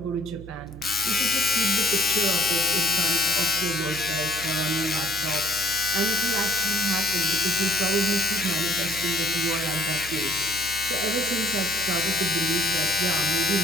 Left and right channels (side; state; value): right; noise; hum, 14 dB below the sound